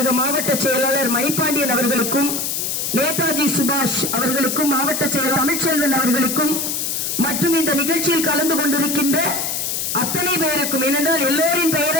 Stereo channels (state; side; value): noise; left; hiss, 1 dB below the sound